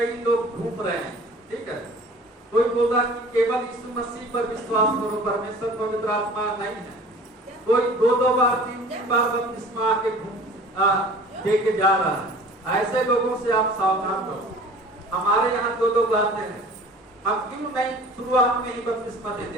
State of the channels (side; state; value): both; normal; correlation 0.45